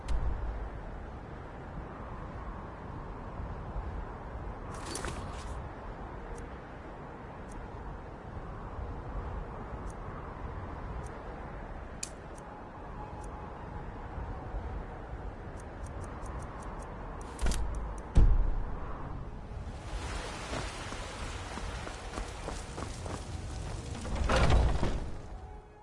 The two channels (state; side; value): identical; both; correlation 1.00